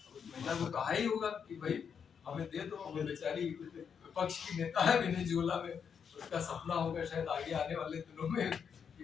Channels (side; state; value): right; quieter; 7.0 dB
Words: को कहा ही होगा कि भाई हमें दे दो, वो बेचारी विपक्ष की नेता है वेनेजुएला में, उसका सपना होगा शायद आगे आने वाले दिनों में कि